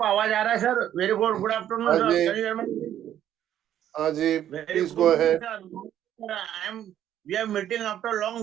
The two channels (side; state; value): left; quieter; 11.0 dB